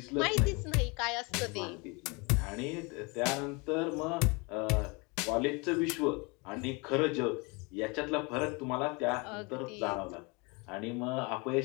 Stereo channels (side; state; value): right; quieter; 28.9 dB